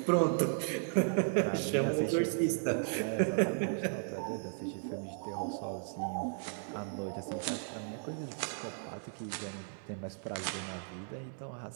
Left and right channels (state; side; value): silent; left; digital silence